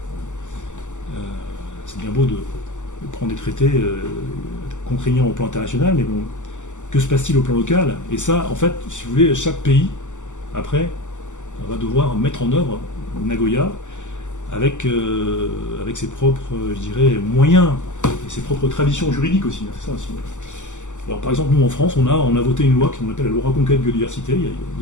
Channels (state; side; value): late; right; 0.85 ms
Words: C'est bien beau de prendre des traités contraignants au plan international, mais bon, que se passe-t-il au plan local? Et ça, en fait, si vous voulez, chaque pays, après, on va devoir mettre en œuvre Nagoya avec ses propres, je dirais, moyens et ses propres traditions juridiques aussi. C'est ça aussi. Alors, par exemple, nous, en France, on a voté une loi qu'on appelle la loi Reconquête Biodiversité, il